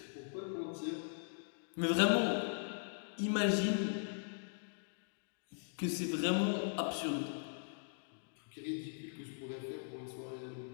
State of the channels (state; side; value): silent; right; digital silence